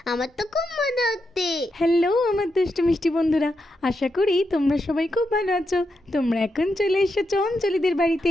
আমার তো খুব মজা হচ্ছে। হ্যালো আমার দুষ্টু মিষ্টি বন্ধুরা, আশা করি তোমরা সবাই খুব ভালো আছো। তোমরা এখন চলে এসেছো অঞ্জলিদের বাড়িতে।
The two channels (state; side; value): normal; both; correlation 0.85